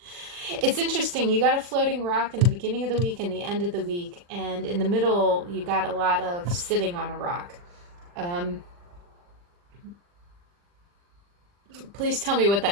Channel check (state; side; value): late; left; 40 ms